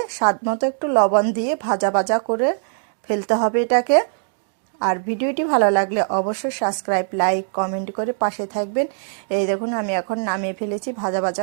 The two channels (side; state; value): left; silent; digital silence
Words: স্বাদ মতো একটু লবণ দিয়ে ভাজা ভাজা করে ফেলতে হবে এটাকে। আর ভিডিওটি ভালো লাগলে অবশ্যই সাবস্ক্রাইব, লাইক, কমেন্ট করে পাশে থাকবেন। এই দেখুন আমি এখন নামিয়ে ফেলেছি ভাজা